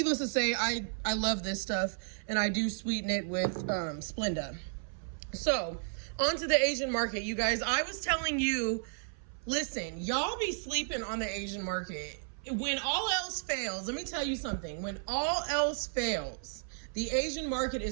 to say, I love this stuff, and I do sweeten it with Splenda. So, on to the Asian market, you guys. I was telling you, listen, y'all be sleeping on the Asian market. When all else fails, let me tell you something. When all else fails, the Asian market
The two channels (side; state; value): left; silent; 56 dB below the other